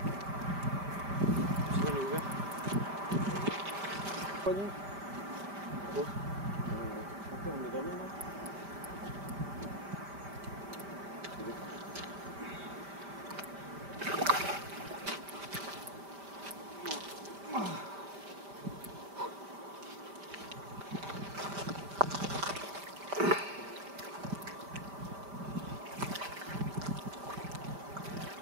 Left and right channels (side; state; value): left; late; 5.1 ms